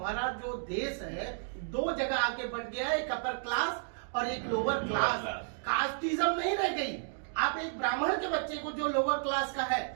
जो देश है 2 जगह आके बढ़ गया है, एक अपर क्लास और एक लोअर क्लास। कास्टिज्म नहीं रह गई। आप एक ब्राह्मण के बच्चे को जो लोअर क्लास का है,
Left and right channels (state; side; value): silent; left; digital silence